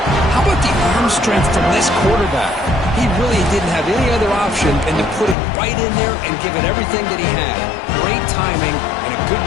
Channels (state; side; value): drops out; right; at 5.4 s